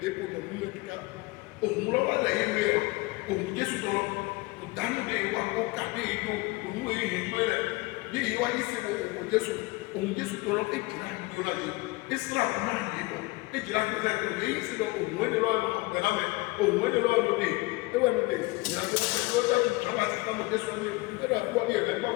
économies de tout cas. Au moins, on va aller. Au milieu sur ton danu de iwa ko kade ido onu e hinwe le ni iwa ise wo Jesu to lo e jira ido la ye Israel na ye do e jira ko se ko e ise do onu e lo no be na me òun ó lè lọ́wọ́ lóde ẹwà lóde ìrìnàjò lọ́dọ̀ tí ìjọba ti ká lóde sọ ní ẹ̀rọ àbúrò ní ẹ̀rọ ẹgbẹ́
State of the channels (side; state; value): right; quieter; 23.3 dB